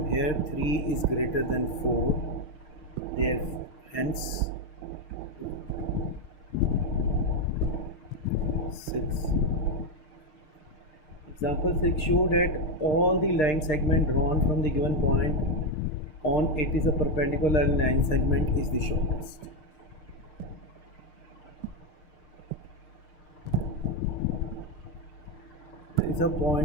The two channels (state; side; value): late; right; 6.5 ms